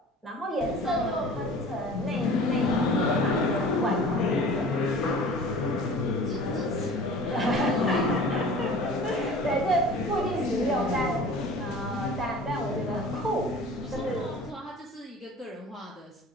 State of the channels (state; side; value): normal; both; correlation 0.42